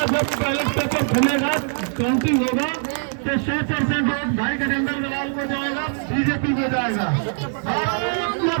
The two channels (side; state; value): left; silent; digital silence